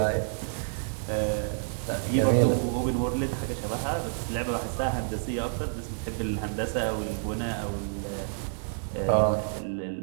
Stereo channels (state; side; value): silent; left; digital silence